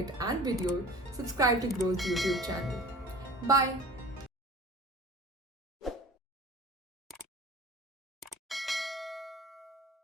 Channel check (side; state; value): both; normal; correlation 0.41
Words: and video, subscribe to Grow's YouTube channel. Bye.